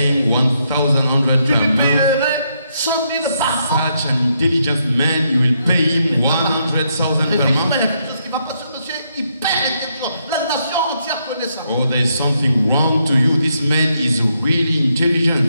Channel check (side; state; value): both; inverted; correlation -0.77